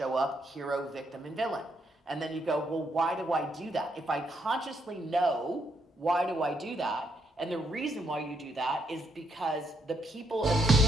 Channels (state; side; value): normal; both; correlation 0.75